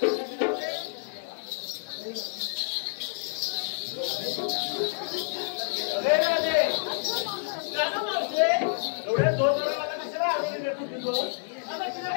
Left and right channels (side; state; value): right; silent; 57 dB below the other